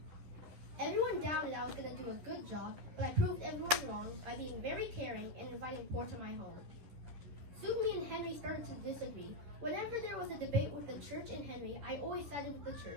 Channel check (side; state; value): left; late; 11 ms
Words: Everyone doubted I was going to do a good job, but I proved everyone wrong by being very caring and inviting poor to my home. Soon me and Henry started to disagree. Whenever there was a debate with the church and Henry, I always sided with the